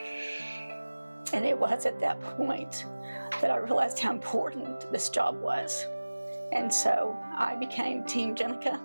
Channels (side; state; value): both; inverted; correlation -1.00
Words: And it was at that point that I realized how important this job was. And so I became Team Jenica,